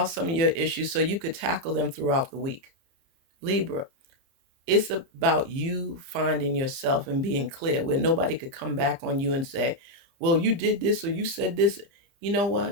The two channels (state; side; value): late; left; 30 ms